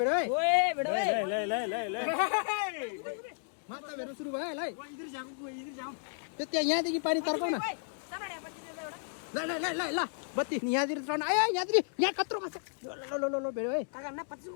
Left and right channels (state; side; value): silent; right; digital silence